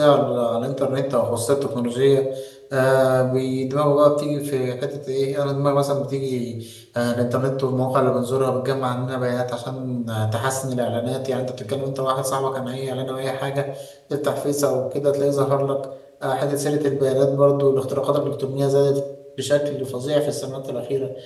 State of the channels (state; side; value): identical; both; correlation 1.00